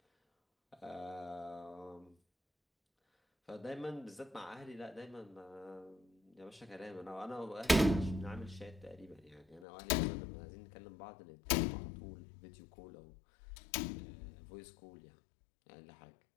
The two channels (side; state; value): right; drops out; at 9.7 s